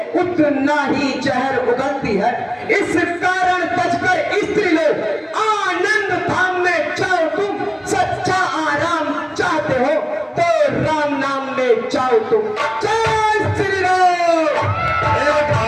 उतना ही जहर उगलती है। इस कारण बचकर स्त्री लोग आनंद धाम में जाओ। तुम सच्चा आराम चाहते हो तो राम नाम में जाओ तुम। जय श्री राम।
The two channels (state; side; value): identical; both; correlation 1.00